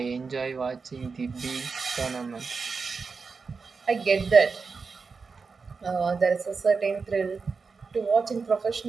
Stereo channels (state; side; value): quieter; left; 4.8 dB